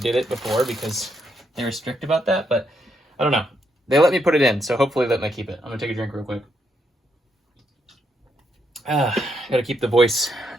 it before because they were strict about that, but I don't know. They let me put it in, so hopefully let me keep it. I'm gonna take a drink real quick. Gotta keep the voice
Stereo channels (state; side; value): normal; both; correlation 0.78